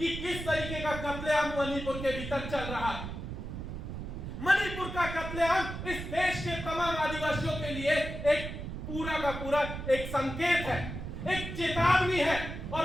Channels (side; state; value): right; noise; rumble, 7 dB below the sound